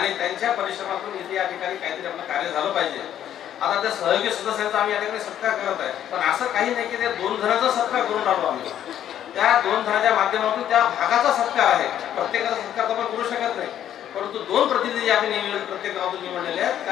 त्यांच्या परिश्रमातून इथे या ठिकाणी काहीतरी आपलं कार्य झालं पाहिजे. आता त्या सहयोगी सदस्यांचा आम्ही या ठिकाणी सत्कार करत आहे, पण असं काही नाही की त्या 2 जणांचा सत्कार करून राहिलो आम्ही. त्या 2 जणांच्या माध्यमातून त्या भागाचा सत्कार आहे. प्रत्येकाचा सत्कार तर आपण करू शकत नाही, परंतु 2 प्रतिनिधी आम्ही निवडले, प्रत्येक गावातून निवडलेले आहेत.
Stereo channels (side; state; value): right; quieter; 10.7 dB